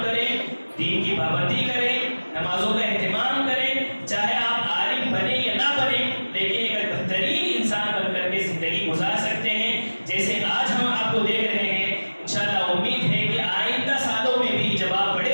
کریں، دین کی پابندی کریں، نمازوں کا اہتمام کریں. چاہے آپ عالم بنے یا نہ بنے، لیکن ایک بہترین انسان بن کر کے زندگی گزار سکتے ہیں. جیسے آج ہم آپ کو دیکھ رہے ہیں، انشاءاللہ امید ہے کہ آئندہ سالوں میں بھی جب آپ بڑے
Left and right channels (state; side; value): inverted; both; correlation -1.00